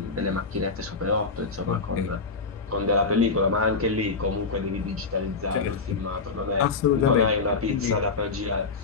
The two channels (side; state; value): right; quieter; 4.3 dB